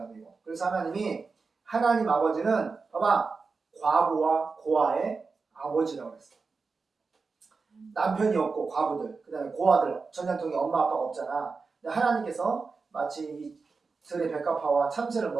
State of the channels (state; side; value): quieter; left; 4.5 dB